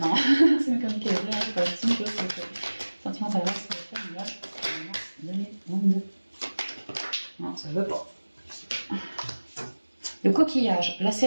C'est une comique c'est pas la petite chose, c'est sentiment d'adresse, c'est le 22. Non, ça veut pas. Le coquillage, la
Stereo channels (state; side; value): inverted; both; correlation -1.00